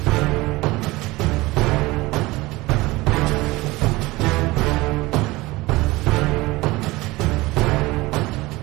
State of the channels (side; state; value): left; quieter; 20.8 dB